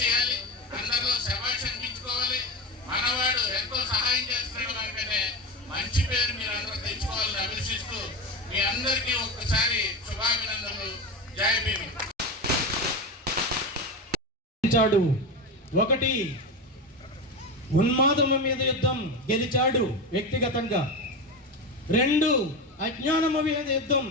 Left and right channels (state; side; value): normal; both; correlation 0.20